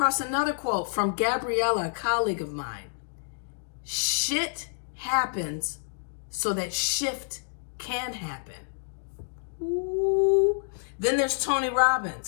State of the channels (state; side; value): silent; right; digital silence